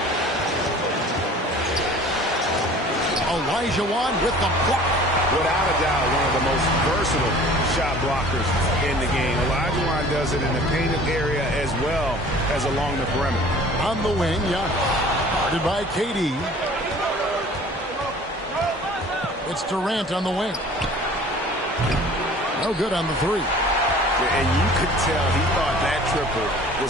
Olajuwon with the block. Without a doubt, one of the most versatile shot blockers in the game. Olajuwon does it in the painted area as well as along the perimeter. On the wing, Giannis. Guarded by KD. It's Durant on the wing. No good on the three. Yeah, and you could tell he thought that triple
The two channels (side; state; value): both; normal; correlation 0.47